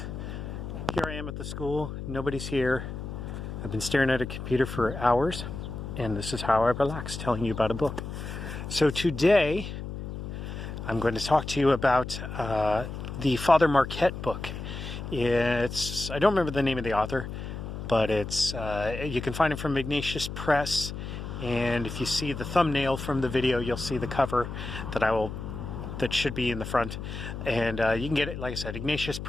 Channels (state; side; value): noise; left; hum, 7 dB below the sound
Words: here I am at the school. Nobody's here. I've been staring at a computer for hours, and this is how I relax, telling you about a book. So today, I'm going to talk to you about the Father Marquette book. I don't remember the name of the author, but you can find it from Ignatius Press, and if you see the thumbnail from the video, you'll see the cover that should be in the front, and you can get it, like I said, Ignatius